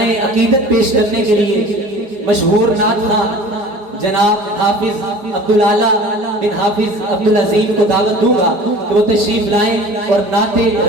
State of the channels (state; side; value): late; left; 4.8 ms